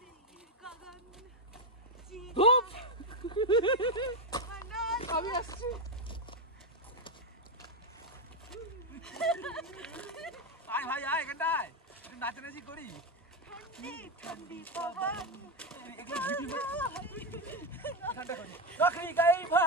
ধুপ আমি আসছি। আয় ভাই আয় এখানটায় একটু নাচানাচি করি। ঠান্ডি ঠান্ডি পবন। नौकरी गई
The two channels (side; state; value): both; normal; correlation 0.08